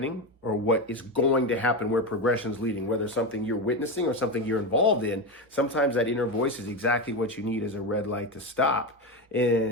or what is going to happen, where progression's leading, whether it's something you're witnessing or something you're involved in. Sometimes that inner voice is exactly what you need as a red light to stop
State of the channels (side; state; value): both; normal; correlation 0.15